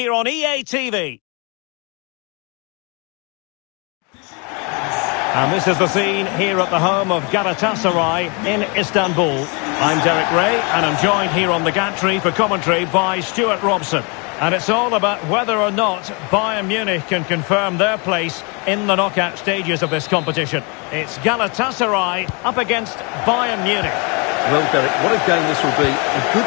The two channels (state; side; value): quieter; right; 32.4 dB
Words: on EA TV. And this is the scene here at the home of Galatasaray in Istanbul. I'm Derek Ray, and I'm joined here on the gantry for commentary by Stuart Robson. And it's all about whether or not Bayern Munich can confirm their place in the knockout stages of this competition. It's Galatasaray up against Bayern Munich. Well, Derek, what a game this will be. A good